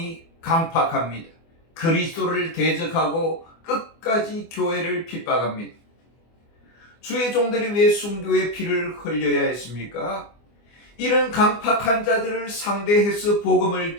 강팍합니다. 그리스도를 대적하고 끝까지 교회를 핍박합니다. 주의 종들이 왜 순교의 피를 흘려야 했습니까? 이런 강팍한 자들을 상대해서 복음을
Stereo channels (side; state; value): right; late; 24 ms